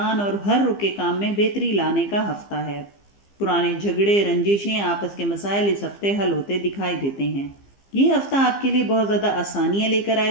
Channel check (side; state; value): right; late; 15 ms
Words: اور ہر رکے کام میں بہتری لانے کا ہفتہ ہے۔ پرانے جھگڑے، رنجشیں، آپس کے مسائل اس ہفتے حل ہوتے دکھائی دیتے ہیں۔ یہ ہفتہ آپ کے لیے بہت زیادہ آسانیاں لے کر